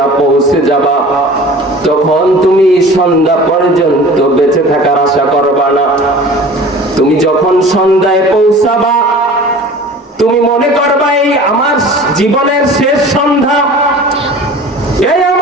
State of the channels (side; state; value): both; normal; correlation 0.42